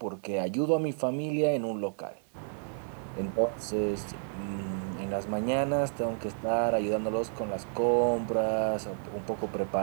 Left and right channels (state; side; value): silent; left; digital silence